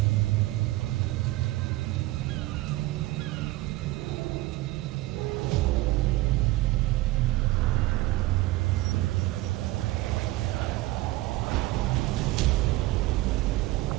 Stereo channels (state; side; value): quieter; left; 18.4 dB